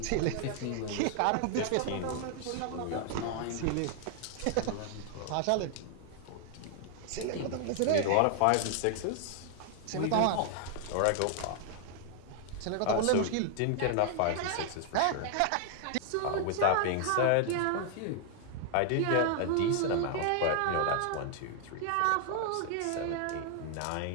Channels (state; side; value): different; both; correlation 0.00